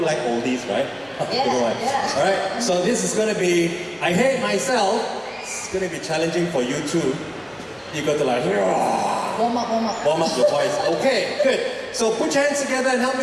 like oldies, right? Yeah, Don't know why. yeah. All right, so this is going to be I Hate Myself. It's going to be challenging for you too. You got to like Warm up. warm up your voice. Okay, good. So put your hands together and help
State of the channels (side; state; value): both; identical; correlation 1.00